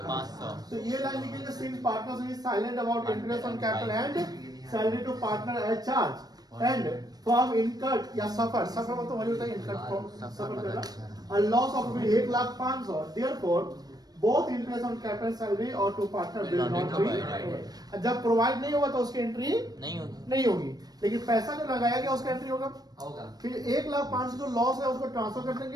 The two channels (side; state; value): left; late; 0.19 ms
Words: तो ये लाइन लिखेंगे since partners is silent about interest on capital and salary to partner as charge and firm incurred या सफर मतलब वही होता है इनकर्ड सफर करना a loss of 1,05,000 therefore both interest on capital salary और to partner will not be। जब provide नहीं होगा तो उसकी एंट्री नहीं होगी, लेकिन पैसा जो लगाया गया उसका एंट्री होगा। फिर 1,05,000 जो लॉस है उसको ट्रांसफर कर